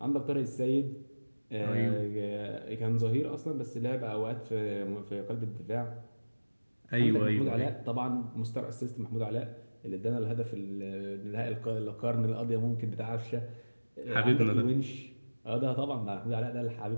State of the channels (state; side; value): inverted; both; correlation -1.00